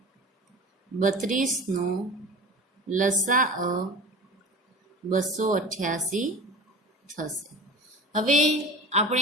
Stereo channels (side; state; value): both; normal; correlation 0.35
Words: 32 નો લસા 288 થશે. હવે